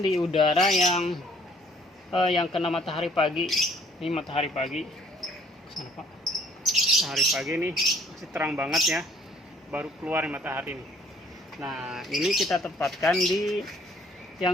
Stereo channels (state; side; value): normal; both; correlation 0.59